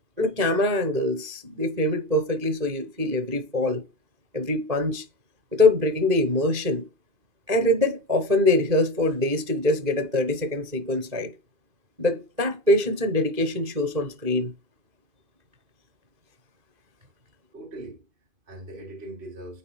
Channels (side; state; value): left; late; 2.5 ms